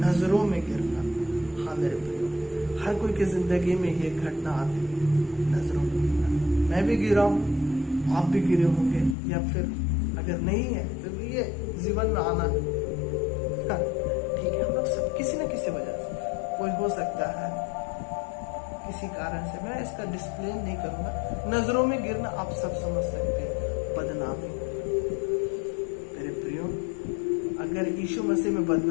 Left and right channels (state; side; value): drops out; right; at 9.2 s